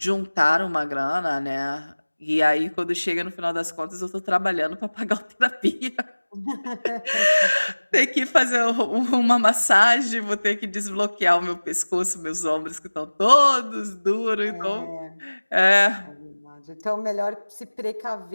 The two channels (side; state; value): both; inverted; correlation -1.00